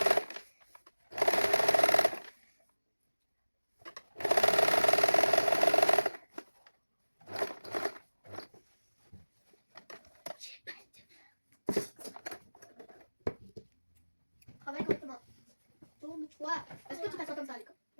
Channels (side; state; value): both; inverted; correlation -1.00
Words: Toi, est-ce que tu t'assois comme ça à l'école?